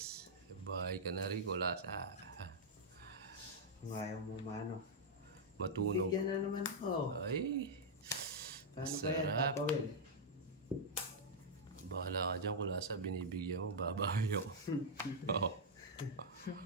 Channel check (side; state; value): both; normal; correlation -0.06